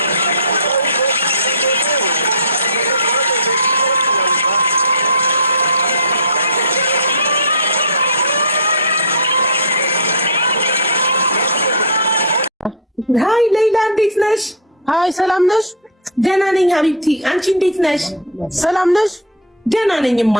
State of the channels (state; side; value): normal; both; correlation -0.03